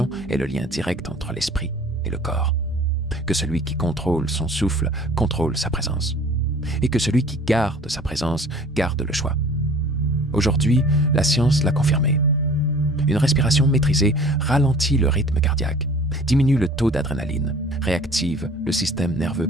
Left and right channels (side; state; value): both; normal; correlation 0.48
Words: est le lien direct entre l'esprit et le corps. Que celui qui contrôle son souffle contrôle sa présence. Et que celui qui garde sa présence garde le choix. Aujourd'hui, la science l'a confirmé. Une respiration maîtrisée ralentit le rythme cardiaque, diminue le taux d'adrénaline, réactive le système nerveux